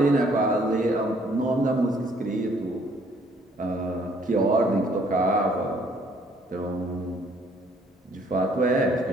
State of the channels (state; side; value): normal; both; correlation 0.63